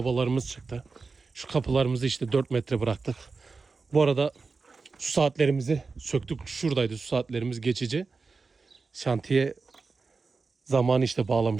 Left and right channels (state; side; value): quieter; left; 4.3 dB